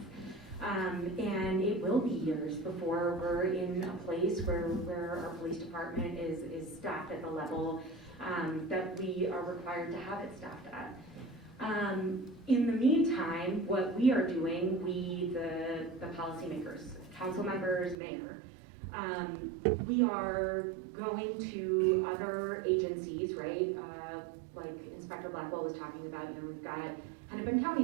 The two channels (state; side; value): drops out; left; at 17.9 s